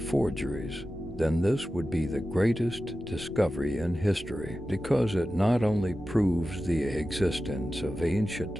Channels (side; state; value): left; noise; rumble, 20 dB below the sound